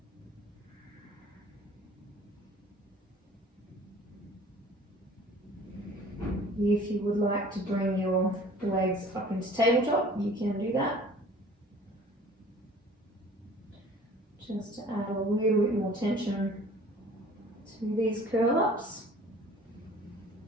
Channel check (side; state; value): both; normal; correlation 0.49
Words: If you would like to bring your legs up into tabletop, you can do that. Just to add a little bit more tension to these curl ups.